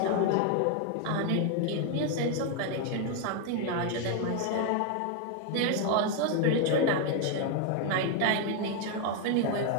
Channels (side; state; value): both; different; correlation 0.01